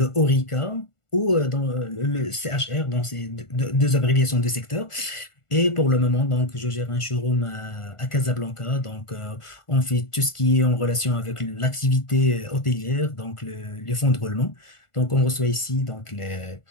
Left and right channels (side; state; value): right; late; 1.4 ms